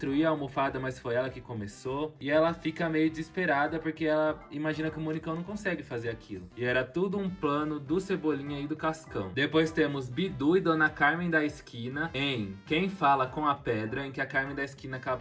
a almofada, mas foi ela que começou. E ela fica meio desesperada porque ela imagina que o Monicão não consegue fazer aquilo. E era tudo um plano do Cebolinha e do Cascão. Depois temos Bidu e Dona Carmen da esquina em Quem Fala com a Pedra, em que a Carmen da esquina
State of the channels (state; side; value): identical; both; correlation 1.00